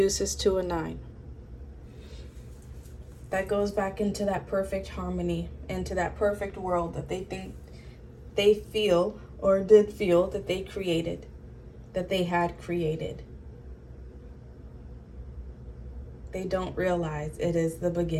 to a 9. That goes back into that perfect harmony, into that perfect world that they think they feel or did feel that they created, that they had created. They don't realize it is the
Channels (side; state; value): both; identical; correlation 1.00